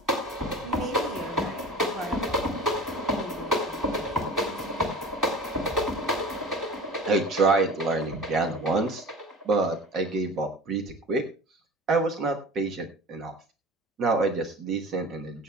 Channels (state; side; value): normal; both; correlation 0.37